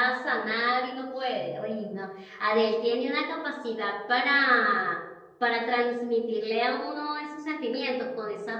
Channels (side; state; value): both; identical; correlation 1.00